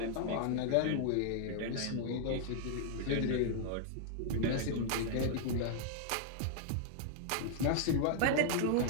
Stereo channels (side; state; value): both; different; correlation -0.01